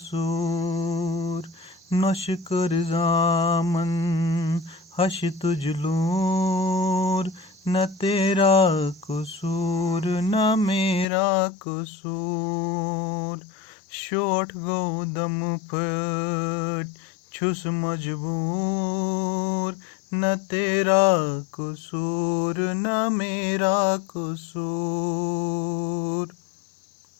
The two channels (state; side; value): drops out; right; at 11.1 s